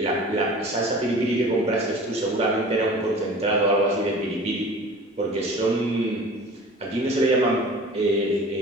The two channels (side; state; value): both; normal; correlation 0.42